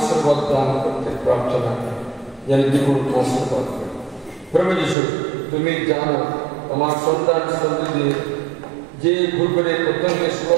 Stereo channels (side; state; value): left; drops out; at 5.0 s